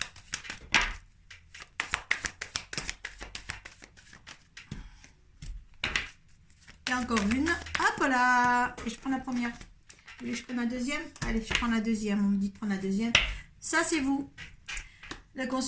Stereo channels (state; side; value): identical; both; correlation 1.00